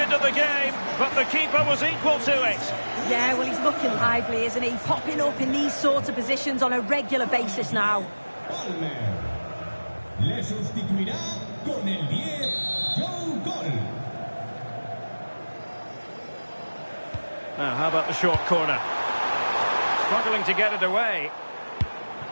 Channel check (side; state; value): both; inverted; correlation -1.00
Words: of the game, but the keeper was equal to it. Yeah, well, he's looking lively, isn't he? Popping up in these sorts of positions on a regular basis now. Le sustituirá con el 10, Joe Gol. Now, how about the short corner? Struggling to get it away.